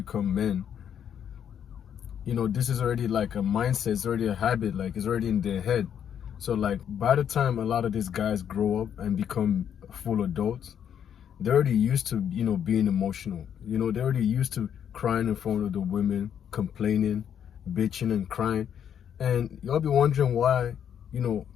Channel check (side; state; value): right; quieter; 8.8 dB